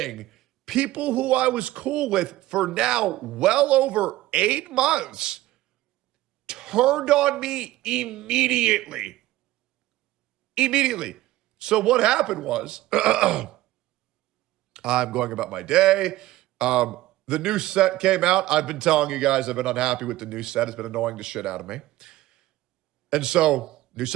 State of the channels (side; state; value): left; quieter; 16.4 dB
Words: people who I was cool with for now well over 8 months turned on me immediately. Immediately. So what happened was, I'm going about my day. The new set came out. I've been telling you guys I've been unhappy with the new set. It's been annoying the shit out of me. And so, new